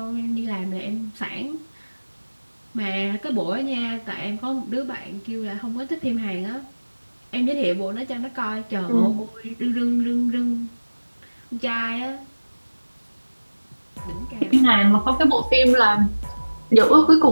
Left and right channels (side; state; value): both; inverted; correlation -1.00